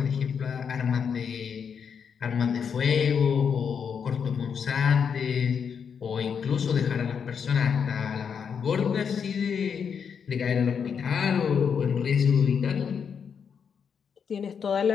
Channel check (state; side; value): quieter; right; 6.9 dB